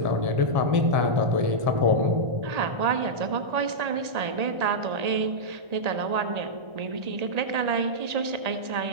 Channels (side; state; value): left; late; 1.8 ms